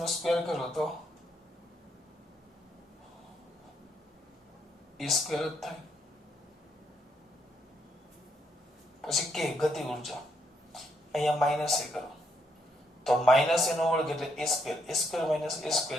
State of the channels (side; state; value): both; normal; correlation 0.75